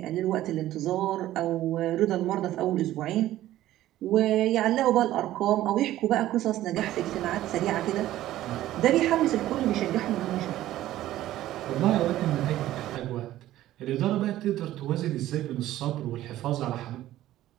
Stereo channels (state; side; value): quieter; left; 14.3 dB